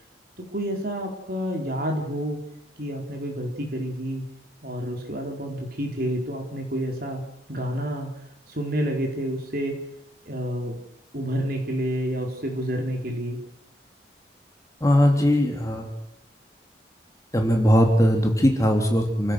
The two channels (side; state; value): both; normal; correlation 0.82